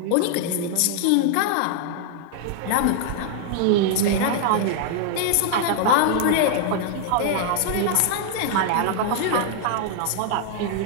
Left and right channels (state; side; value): different; both; correlation -0.01